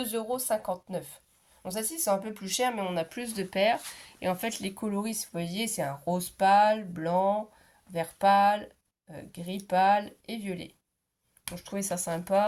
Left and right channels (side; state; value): both; identical; correlation 1.00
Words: €. Bon, celle-ci, c'est un peu plus cher, mais on a plus de paires. Et en fait, les coloris, vous voyez, c'est un rose pâle, blanc, vert pâle, gris pâle et violet. Donc, je trouvais ça